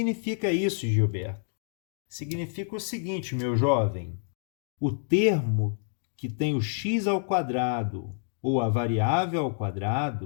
isso, Gilberto? Significa o seguinte, meu jovem. O termo que tem o x ao quadrado ou a variável ao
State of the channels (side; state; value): right; silent; digital silence